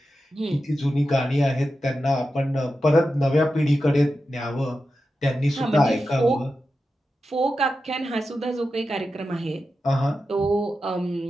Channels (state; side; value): normal; both; correlation 0.91